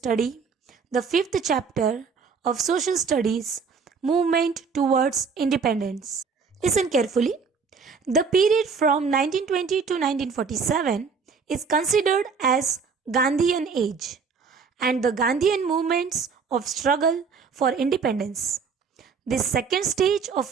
the 5th chapter of Social Studies, Movement Towards Independence. Listen carefully. The period from 1920 to 1947 is considered as Gandhian age and the Gandhian movements of struggle for independence. This second stage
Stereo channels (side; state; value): left; quieter; 5.5 dB